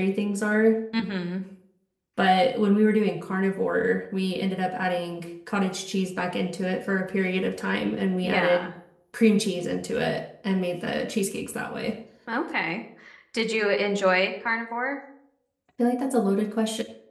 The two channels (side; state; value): both; identical; correlation 1.00